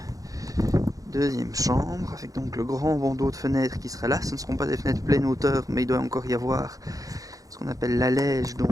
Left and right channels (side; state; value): left; late; 0.17 ms